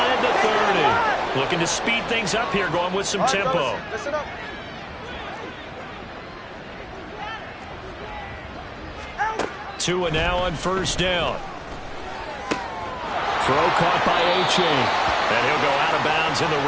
the 30. Looking to speed things up here, going with some tempo. Listen up. Tua now on 1st down. Throw caught by A-Chain. And he'll go out of bounds in the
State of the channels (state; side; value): identical; both; correlation 1.00